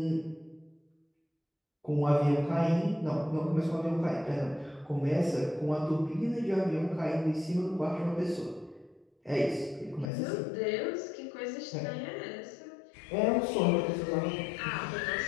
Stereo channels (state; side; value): drops out; right; at 10.1 s